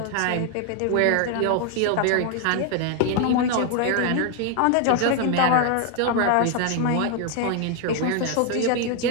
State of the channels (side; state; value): both; different; correlation 0.01